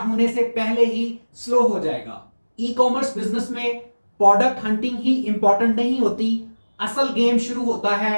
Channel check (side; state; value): both; inverted; correlation -1.00